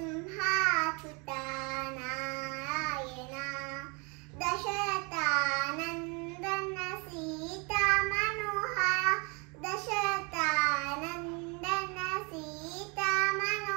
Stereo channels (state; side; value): quieter; left; 31.1 dB